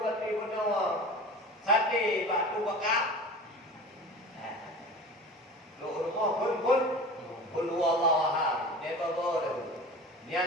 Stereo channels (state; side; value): normal; both; correlation 0.36